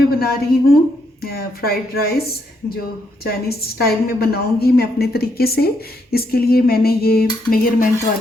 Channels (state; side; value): normal; both; correlation 0.76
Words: बना रही हूँ फ्राइड राइस, जो चाइनीज़ स्टाइल में बनाऊँगी मैं अपने तरीके से। इसके लिए मैंने ये मेजरमेंट